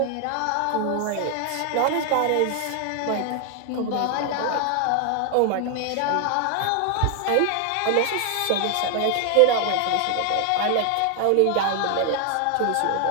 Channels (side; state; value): both; different; correlation 0.00